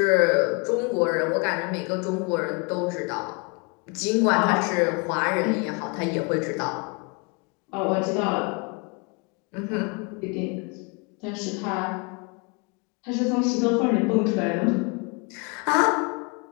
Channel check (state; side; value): quieter; right; 31.9 dB